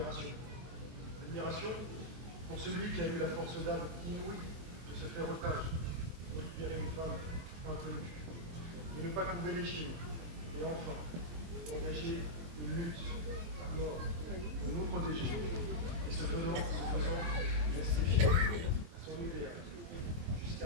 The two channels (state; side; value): late; left; 24 ms